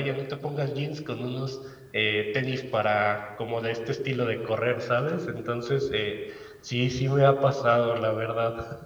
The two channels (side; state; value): both; identical; correlation 1.00